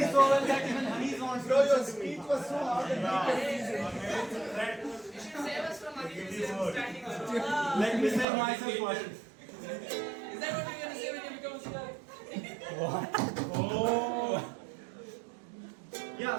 so well that even honey is on. Bro, your speech was so hard and Save us from standing alone. Let me say myself first. Is that what you're going to say when you become a CR?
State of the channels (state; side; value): drops out; left; at 8.2 s